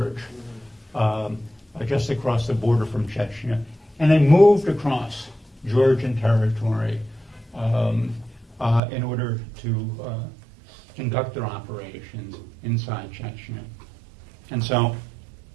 just across the border from Chechnya, and they moved across Georgian territory in order to conduct their operations inside Chechnya. And so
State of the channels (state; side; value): drops out; left; at 8.8 s